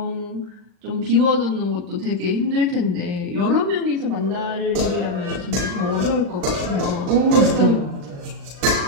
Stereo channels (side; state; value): left; late; 40 ms